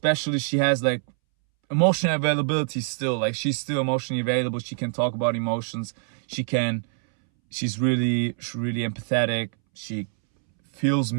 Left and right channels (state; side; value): silent; left; 62 dB below the other